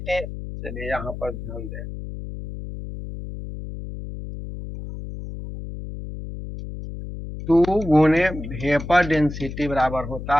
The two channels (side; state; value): left; noise; hum, 9 dB below the sound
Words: चलिए यहाँ पर ध्यान दें, 2 गुने वेपर डेंसिटी बराबर होता